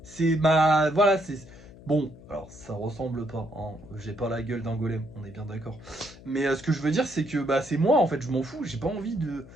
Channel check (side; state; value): left; noise; hum, 19 dB below the sound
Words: C'est ma... Voilà, c'est... Bon, alors ça ressemble pas, hein. J'ai pas la gueule d'un golem, on est bien d'accord. Mais ce que je veux dire, c'est que bah, c'est moi en fait, je m'en fous, j'ai pas envie de.